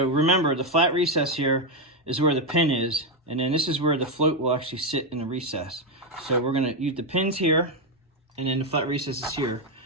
remember, the flat recess here is where the pin is, and then this is where the float will actually sit in the recess. So we're gonna use the pins here, and then the flat recess is here.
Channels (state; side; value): normal; both; correlation 0.05